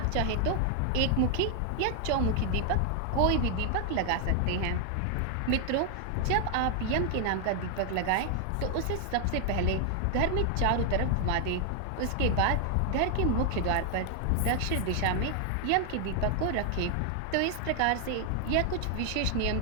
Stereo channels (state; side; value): different; both; correlation 0.00